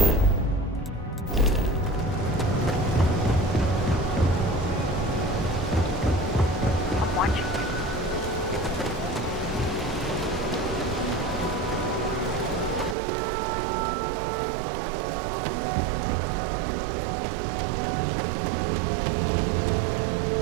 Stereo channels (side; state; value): left; drops out; at 13.0 s